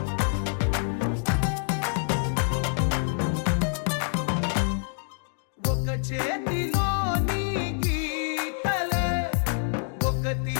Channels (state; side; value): silent; right; 60 dB below the other